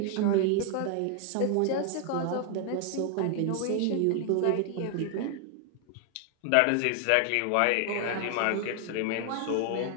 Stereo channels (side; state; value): both; different; correlation 0.00